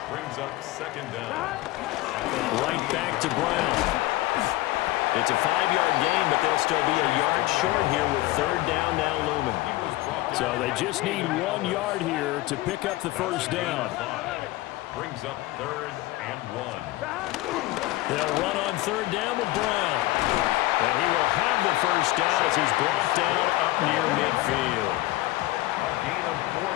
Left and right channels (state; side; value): quieter; right; 18.1 dB